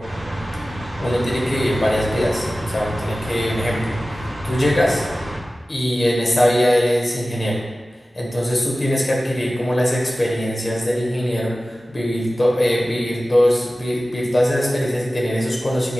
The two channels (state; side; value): normal; both; correlation 0.96